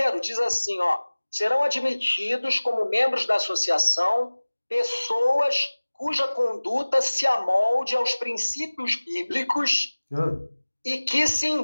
diz assim, serão admitidos como membros da associação pessoas cuja conduta se amolde aos princípios bíblicos e que se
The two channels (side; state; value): both; inverted; correlation -1.00